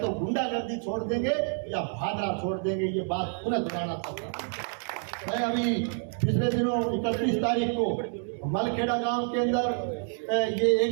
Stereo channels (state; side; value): silent; left; 59 dB below the other